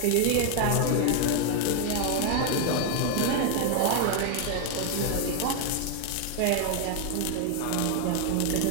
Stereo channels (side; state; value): both; different; correlation 0.00